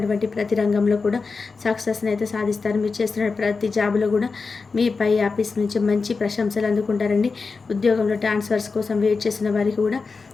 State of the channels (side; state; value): right; quieter; 4.5 dB